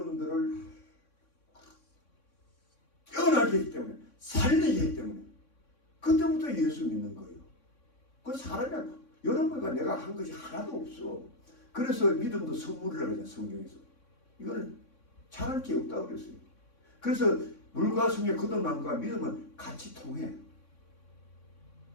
깨어나게 했기 때문에, 살리게 했기 때문에 그때부터 예수 믿는 거예요. 그 사람이 여러분과 내가 한 것이 하나도 없어. 그래서 믿음도 선물이라고 하잖아요. 성경에서. 이거는 잘할 게 없다고 그랬어요. 그래서 물과 성령 거듭남과 믿음은 같이 통해.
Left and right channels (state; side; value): late; right; 3.6 ms